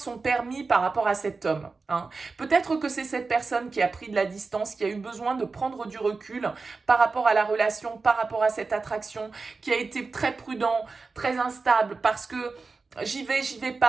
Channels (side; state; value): left; quieter; 4.2 dB